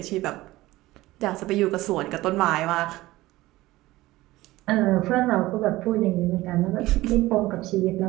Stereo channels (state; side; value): quieter; left; 18.0 dB